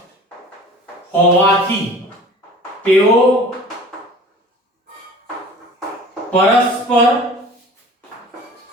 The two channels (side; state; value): both; normal; correlation 0.43